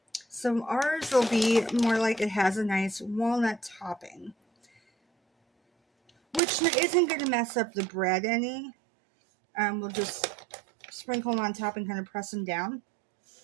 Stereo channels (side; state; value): left; drops out; at 6.4 s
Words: So ours will be more like it has a nice walnut topping, which isn't going to mess up the bread any. We'll just sprinkle them on top and kind of press them down.